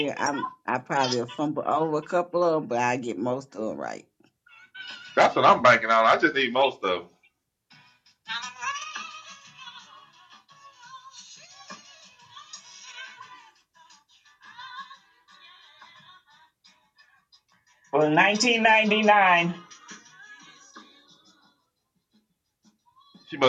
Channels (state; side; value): identical; both; correlation 1.00